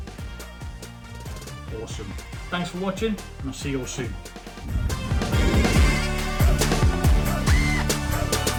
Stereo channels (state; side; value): identical; both; correlation 1.00